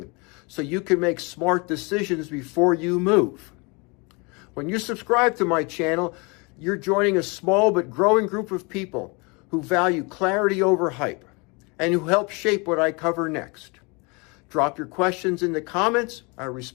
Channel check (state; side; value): quieter; right; 29.5 dB